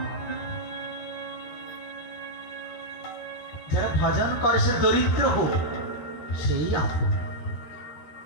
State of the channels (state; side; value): late; right; 13 ms